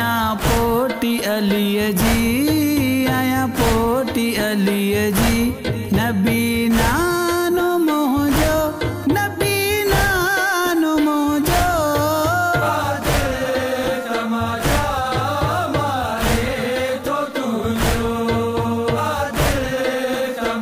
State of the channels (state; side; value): identical; both; correlation 1.00